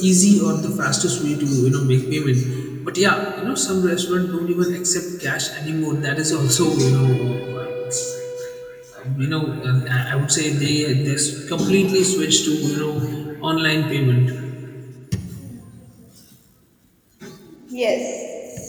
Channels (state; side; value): identical; both; correlation 1.00